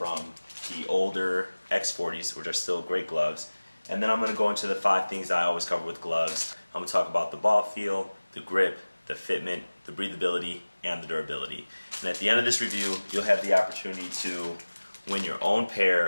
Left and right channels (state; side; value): inverted; both; correlation -1.00